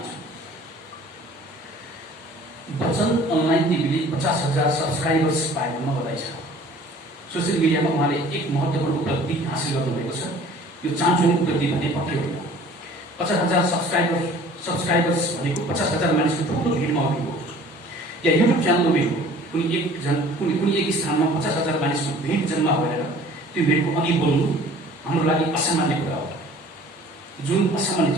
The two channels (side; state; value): both; normal; correlation 0.49